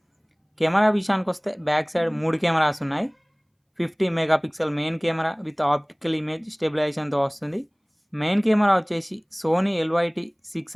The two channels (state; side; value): identical; both; correlation 1.00